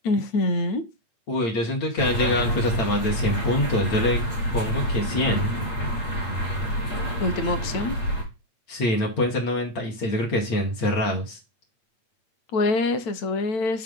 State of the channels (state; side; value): late; right; 8.8 ms